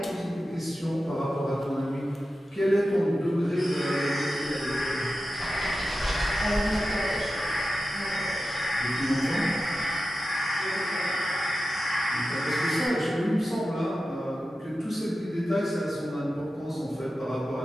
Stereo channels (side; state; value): both; normal; correlation 0.92